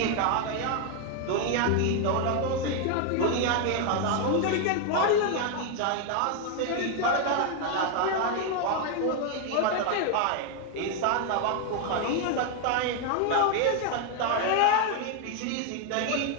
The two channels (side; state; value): both; different; correlation 0.01